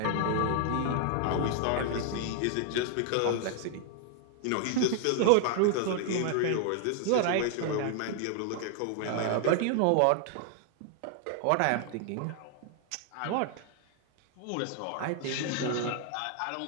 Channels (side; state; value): both; different; correlation 0.00